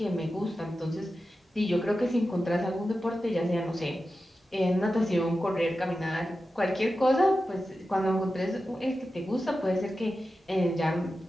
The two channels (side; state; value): both; normal; correlation 0.92